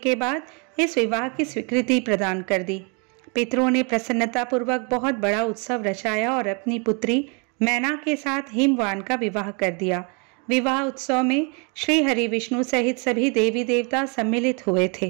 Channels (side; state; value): left; quieter; 34.1 dB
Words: बाद इस विवाह की स्वीकृति प्रदान कर दी। पितरों ने प्रसन्नतापूर्वक बहुत बड़ा उत्सव रचाया और अपनी पुत्री मैना के साथ हिमवान का विवाह कर दिया। विवाह उत्सव में श्री हरि विष्णु सहित सभी देवी देवता सम्मिलित हुए